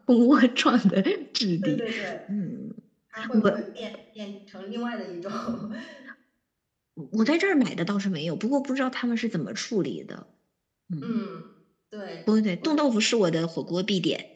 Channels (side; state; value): both; identical; correlation 1.00